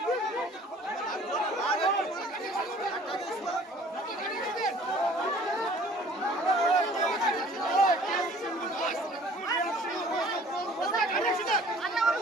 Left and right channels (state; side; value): normal; both; correlation 0.51